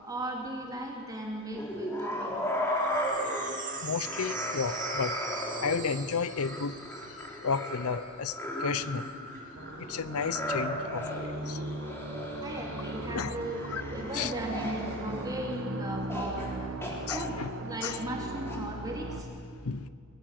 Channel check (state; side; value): normal; both; correlation 0.17